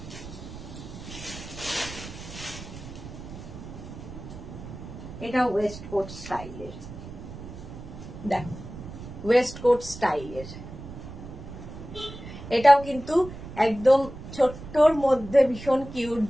এটা ওয়েস্ট কোট স্টাইলের, দেখো ওয়েস্ট কোট স্টাইলের, এটাও কিন্তু একদম ছোট্টর মধ্যে ভীষণ কিউট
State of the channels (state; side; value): noise; right; rumble, 12 dB below the sound